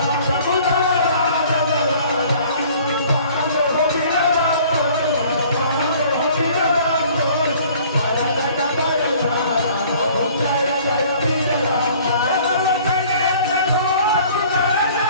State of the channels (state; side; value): inverted; both; correlation -0.53